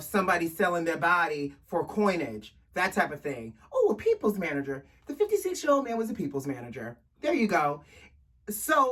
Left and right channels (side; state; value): both; identical; correlation 1.00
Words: somebody selling their body for coinage, that type of thing. Oh, a people's manager. The 56-year-old man was a people's manager. There you go.